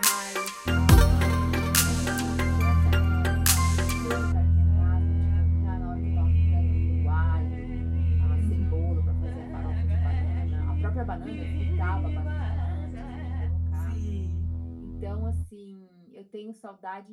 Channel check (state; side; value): identical; both; correlation 1.00